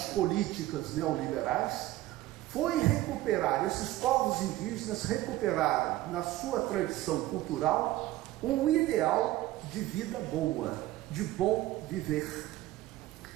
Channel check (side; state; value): left; quieter; 16.0 dB